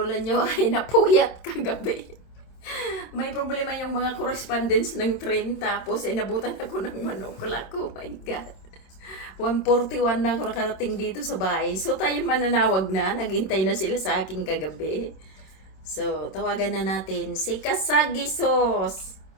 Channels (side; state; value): right; late; 26 ms